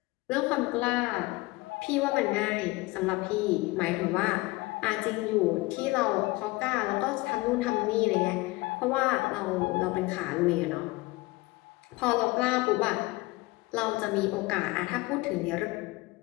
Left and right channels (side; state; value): right; quieter; 22.0 dB